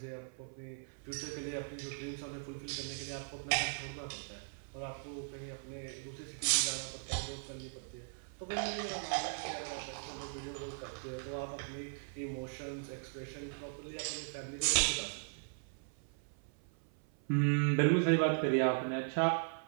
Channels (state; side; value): silent; left; 52 dB below the other